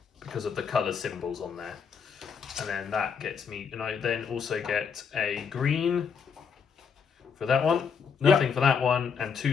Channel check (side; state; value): right; quieter; 6.3 dB